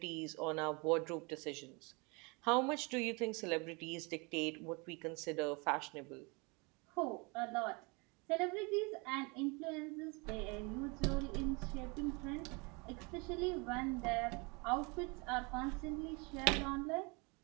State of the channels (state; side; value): quieter; left; 29.4 dB